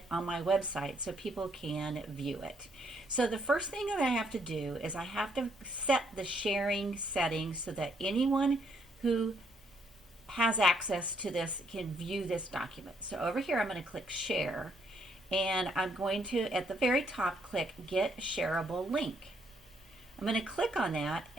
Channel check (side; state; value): both; normal; correlation 0.71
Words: on my website so people can view it. So the first thing that I have to do is I have to set the sharing settings so that anyone who has access to this can view this document. So over here I'm going to click Share. And I'm going to, at the very top, click Get Shareable Link. I'm going to click on that,